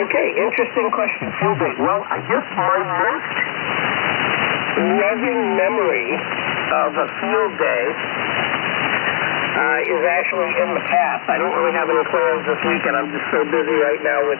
okay, interesting question. Field day. Well, I guess my most loving memory of a field day is actually in the past. I don't really have any plans this weekend. I'm just so busy right now with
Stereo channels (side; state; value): right; silent; digital silence